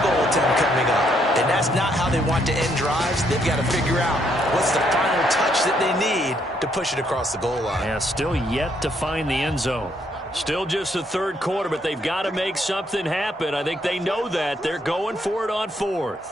goal attempt coming up. And that's not how they want to end drives. They've got to figure out what's the final touch that they need to push it across the goal line. Yeah, still yet to find the end zone. Still just the third quarter, but they've got to make something happen. I think they know that. They're going for it on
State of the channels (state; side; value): normal; both; correlation 0.72